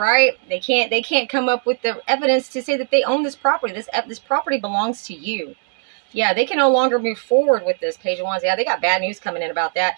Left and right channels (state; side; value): silent; left; 59 dB below the other